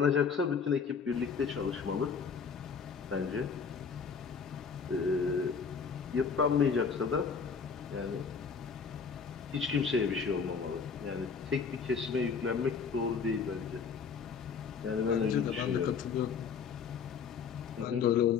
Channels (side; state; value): right; quieter; 5.9 dB